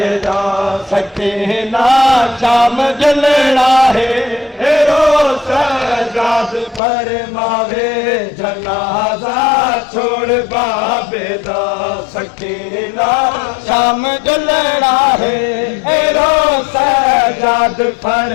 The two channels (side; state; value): right; drops out; at 6.8 s